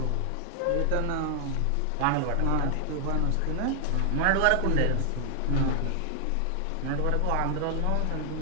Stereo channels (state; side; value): different; both; correlation 0.00